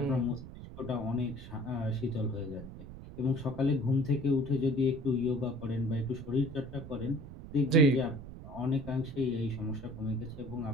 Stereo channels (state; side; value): noise; right; rumble, 13 dB below the sound